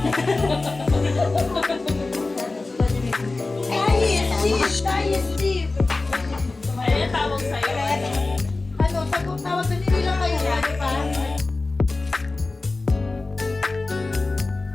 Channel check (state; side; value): quieter; right; 3.4 dB